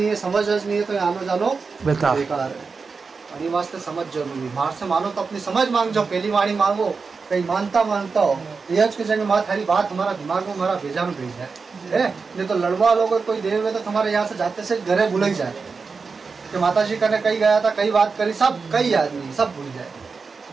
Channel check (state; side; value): quieter; left; 4.8 dB